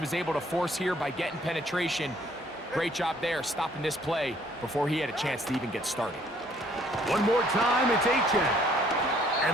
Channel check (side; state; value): both; normal; correlation 0.62